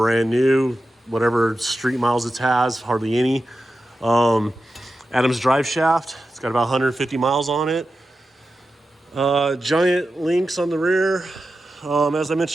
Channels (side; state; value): both; normal; correlation 0.91